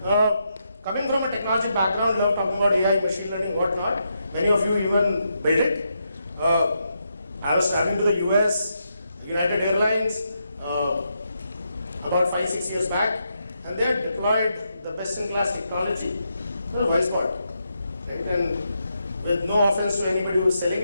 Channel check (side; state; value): both; inverted; correlation -0.82